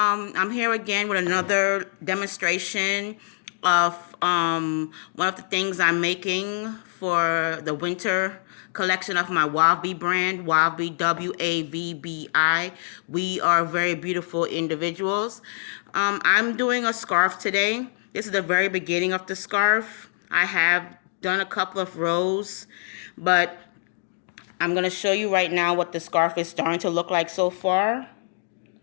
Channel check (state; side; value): silent; right; digital silence